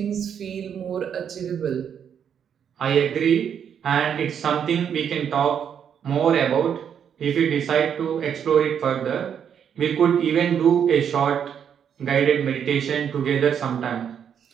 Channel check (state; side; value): quieter; left; 8.2 dB